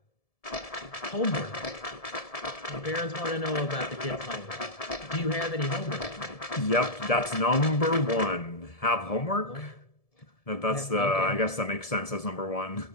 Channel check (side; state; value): right; late; 1.7 ms